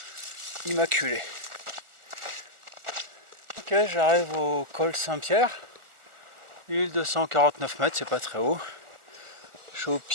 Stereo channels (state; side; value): late; left; 1.4 ms